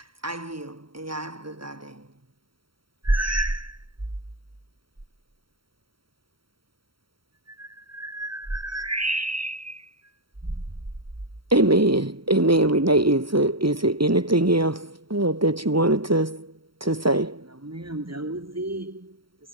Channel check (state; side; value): late; left; 0.74 ms